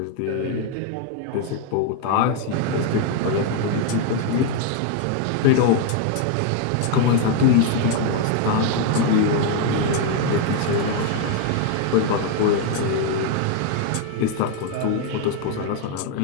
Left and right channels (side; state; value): both; different; correlation 0.01